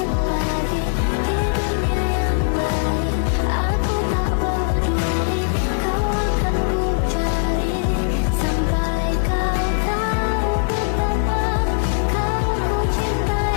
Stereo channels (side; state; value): right; silent; 62 dB below the other